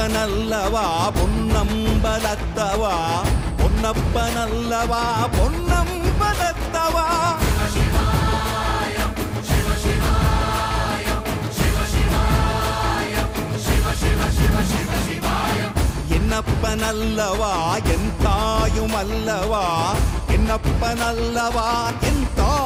பொன்னம்பலத்தவா, பொன்னப்பனல்லவா பொன்னம்பலத்தவா. என்னப்பனல்லவா என் தாயுமல்லவா, என்னப்பனல்லவா என்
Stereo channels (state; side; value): identical; both; correlation 1.00